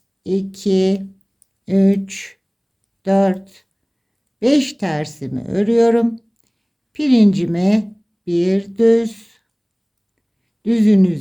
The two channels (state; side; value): identical; both; correlation 1.00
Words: 2, 3, 4, 5 tersimi örüyorum. Pirincime bir düz, düzün